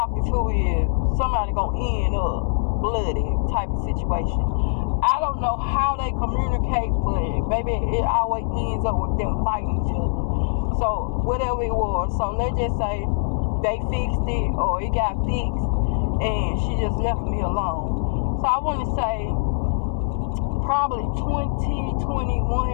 to is somebody gonna end up bloody type of situation. I don't know how they communicate, but baby, it always ends up with them fighting each other. So whatever it was, so let's just say they fixed it or it got fixed and she just left me alone. So I want to say probably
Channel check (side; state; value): right; silent; 63 dB below the other